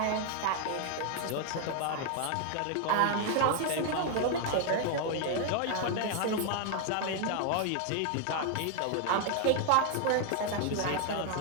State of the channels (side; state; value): both; different; correlation 0.00